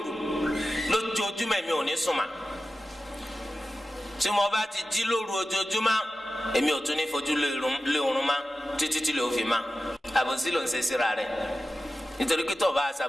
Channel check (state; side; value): normal; both; correlation 0.94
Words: lójoojúmọ́ èmi ò ní sùn mà tí mo bá ti jí lóru ojoojúmọ́ èmi ò tún ní fojú lé oorun má títí tí lè ó fi má àbòsí ló ń ṣe síra rẹ̀ nítorí pé tó bá